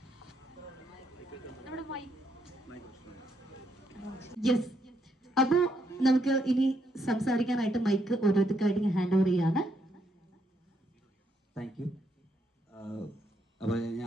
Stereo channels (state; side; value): normal; both; correlation 0.76